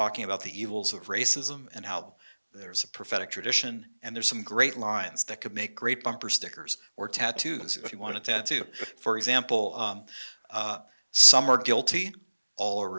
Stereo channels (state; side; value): inverted; both; correlation -1.00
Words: about the evils of racism and how there's a prophetic tradition, and there's some great lines that could make great bumper stickers or tattoos if you want a tattoo. For example, some are guilty, all are